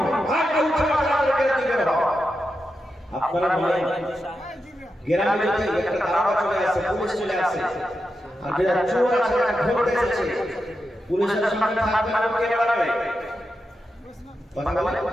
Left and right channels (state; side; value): normal; both; correlation 0.88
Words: হাত উঠে তাড়াতাড়ি করে দিবে বাবা। আপনারা বলেন গ্রামে যদি একটা দারোগা চলে আসে, পুলিশ চলে আসে, আর যারা চোর আছে তারা ধরতে এসেছে, পুলিশের সামনে থাকবে না কে বাড়াবে কথা বলে